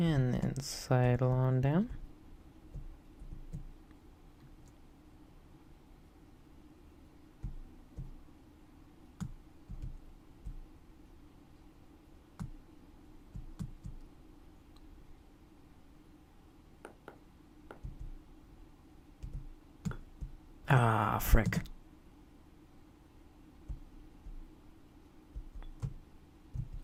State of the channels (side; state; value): both; identical; correlation 1.00